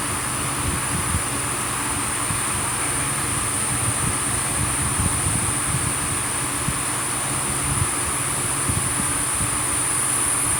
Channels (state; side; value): noise; left; hiss, 12 dB below the sound